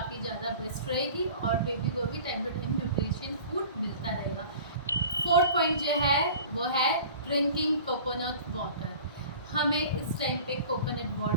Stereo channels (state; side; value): inverted; both; correlation -0.42